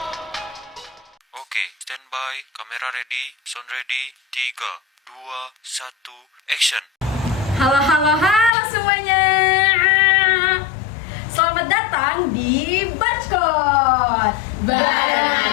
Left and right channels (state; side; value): drops out; right; at 8.5 s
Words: Oke, standby, kamera ready, sound ready, 3, 2, 1, action. Halo semuanya. Selamat datang di Barcode Bareng